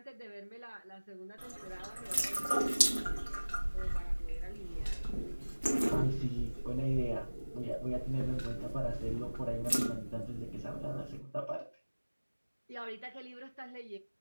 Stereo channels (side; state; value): both; inverted; correlation -1.00